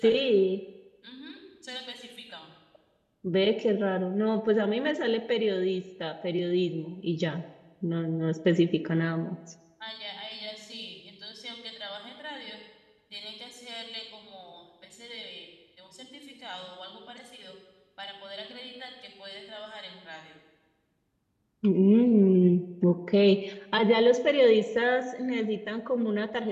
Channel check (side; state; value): both; identical; correlation 1.00